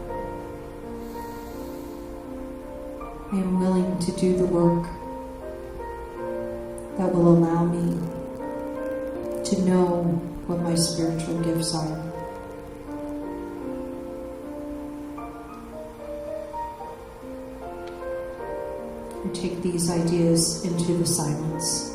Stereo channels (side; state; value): both; identical; correlation 1.00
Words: I am willing to do the work that will allow me to know what my spiritual gifts are. And take these ideas into the silence.